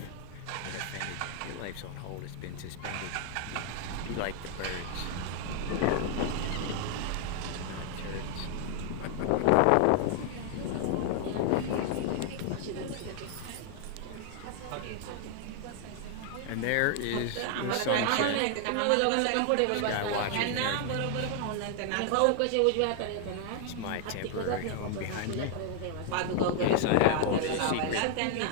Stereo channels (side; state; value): both; different; correlation 0.00